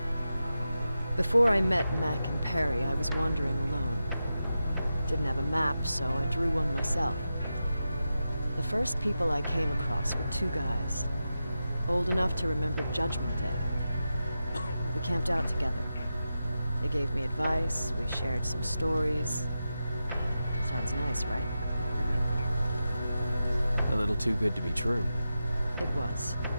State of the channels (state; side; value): inverted; both; correlation -0.90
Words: before I met Mac and Perry, I was wandering alone. Didn't have a map, so I drew one myself. The first people I came across were two guys, old enough to remember Judgment Day. We camped out together. They gave me advice, we shared some stories. Sounds nice, right? A little too good to be true. It was.